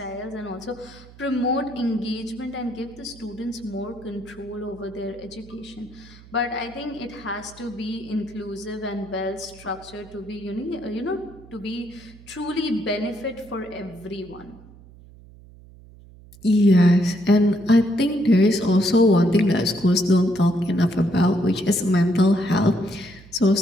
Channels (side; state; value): right; noise; hum, 22 dB below the sound